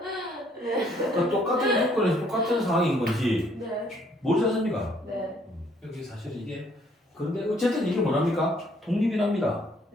그러니까 똑같은 조건에서 똑같은 상황인 건지 네. 모르지 않습니까? 네. 여기 사실 이게 그런데 어쨌든 이게 뭐랍니까? 독립이랍니다.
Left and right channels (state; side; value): normal; both; correlation 0.65